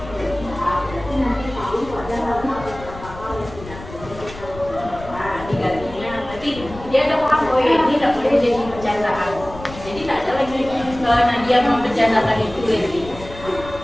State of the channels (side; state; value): left; noise; rumble, 14 dB below the sound